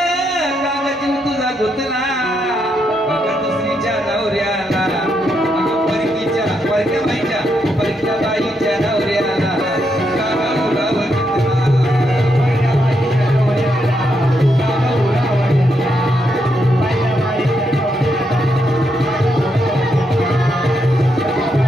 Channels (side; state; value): both; normal; correlation 0.80